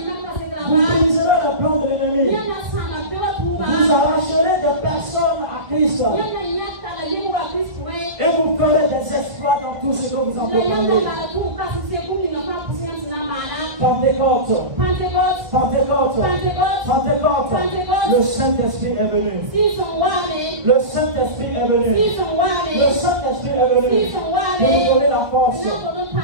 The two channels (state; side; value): late; left; 1.8 ms